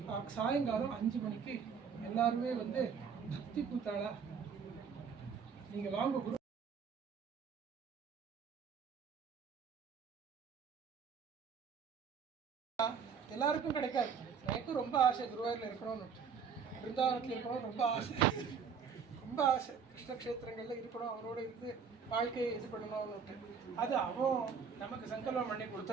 சாயங்காலம் 5 மணிக்கு எல்லாருமே வந்து பக்தி கூத்தாளா நீங்க வாங்க. குரு எல்லாருக்கும் கிடைக்காது. எனக்கும் ரொம்ப ஆசை குருவாயூரில் இருக்கணும்னு, பிருந்தாவனத்தில் இருக்கணும் ரொம்ப ஆசை, ரொம்ப ஆசை. கிருஷ்ணக்ஷேத்திரங்களில் இருக்கணும், அவரோட இருந்து வாழ்க்கையை இது பண்ணணும்னுட்டு. அது அவன் நமக்கு சங்கல்பம் பண்ணி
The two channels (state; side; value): quieter; left; 6.4 dB